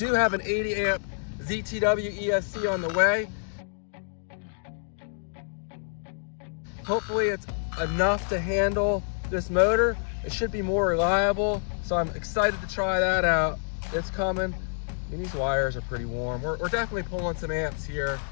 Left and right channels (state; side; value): silent; right; digital silence